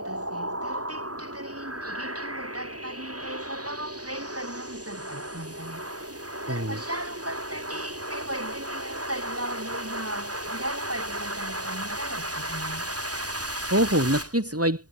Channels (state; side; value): late; left; 0.68 ms